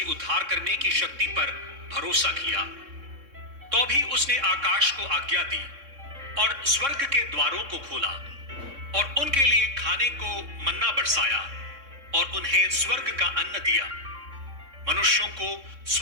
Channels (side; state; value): left; late; 3.6 ms